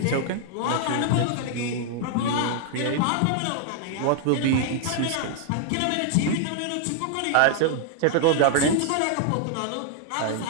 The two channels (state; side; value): different; both; correlation 0.00